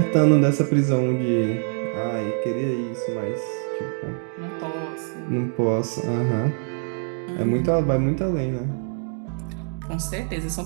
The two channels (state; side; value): silent; left; 62 dB below the other